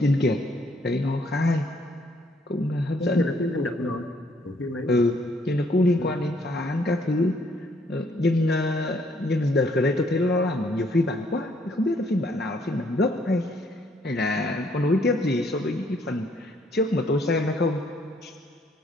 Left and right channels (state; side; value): normal; both; correlation 0.67